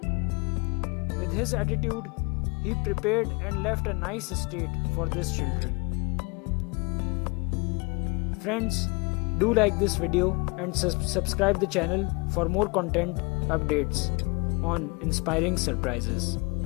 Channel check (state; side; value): quieter; right; 29.3 dB